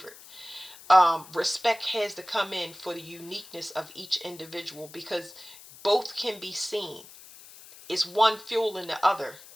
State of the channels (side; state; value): left; noise; hiss, 19 dB below the sound